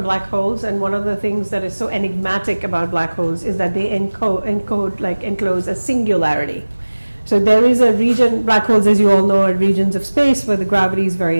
black holes, and one of the things that is so enigmatic about black holes is that they enclose a singularity. So there is a region, black holes, as you all know, are regions of space where the gravity is very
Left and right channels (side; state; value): both; inverted; correlation -1.00